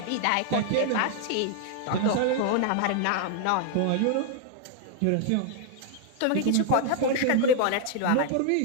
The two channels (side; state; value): both; different; correlation 0.00